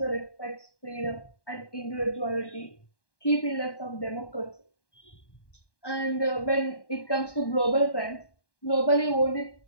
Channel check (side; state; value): right; late; 1.2 ms